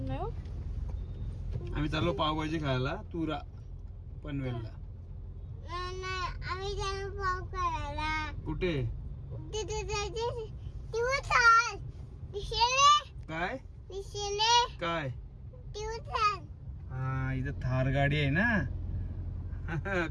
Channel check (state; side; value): identical; both; correlation 1.00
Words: हो. आम्ही चाललो पावभाजी खायला तुरा पनवेलला. कुठे? काय काय? हा, इथं थार गाडी आहे ना.